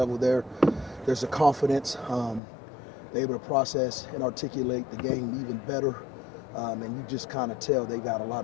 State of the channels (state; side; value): drops out; right; at 2.4 s